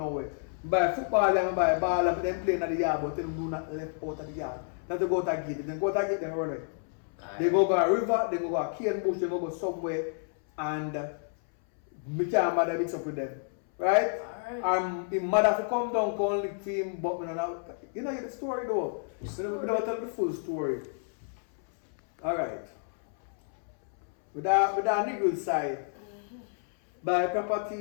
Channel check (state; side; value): silent; right; 58 dB below the other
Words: Buy football and buy ball and them playing at the yard, but them do not left out of the yard. Not to go to gate. If they go to gate, them run away. They go a river, they go a cane bush, they go somewhere, and me can't bother mix up with them. Right? Alright. His mother to come down, come lick for him, but me not, you know the story though. We don't tell the full story. Alright. With that niggle side, buy